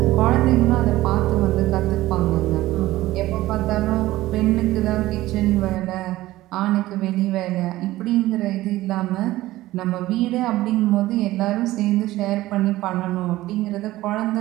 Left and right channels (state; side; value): quieter; left; 16.7 dB